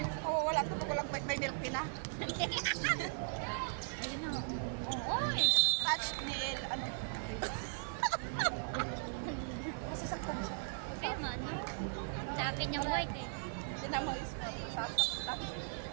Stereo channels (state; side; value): silent; left; 52 dB below the other